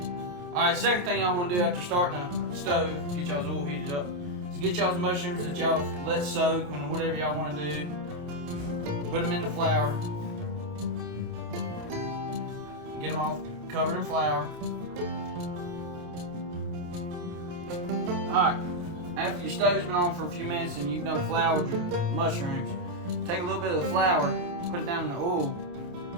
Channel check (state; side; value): late; left; 28 ms